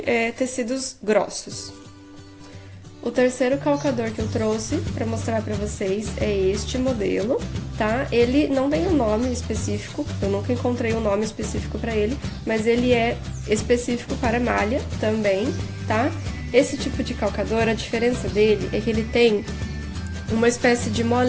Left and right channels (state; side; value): identical; both; correlation 1.00